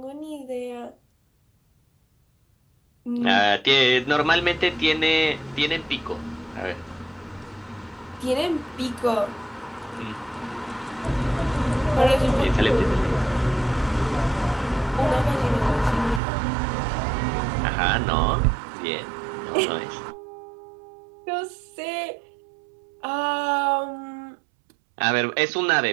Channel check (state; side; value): drops out; left; at 16.2 s